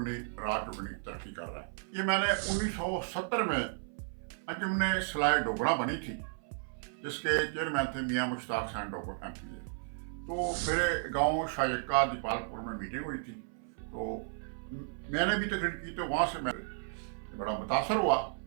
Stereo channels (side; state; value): left; silent; 55 dB below the other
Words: रात दुगनी तरक्की कर रहा है। ये मैंने 1970 में अंजुमन सलाह डोगरा बनी थी, जिसके चेयरमैन थे मियाँ मुश्ताक हुसैन डोगर MP। तो मेरे गांव शायका दीपालपुर में मीटिंग हुई थी, तो मैंने भी तकरीर की, तो वहाँ से मैं बड़ा मुतासर हुआ